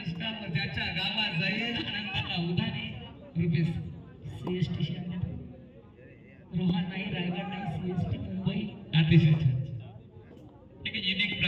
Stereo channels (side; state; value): both; identical; correlation 1.00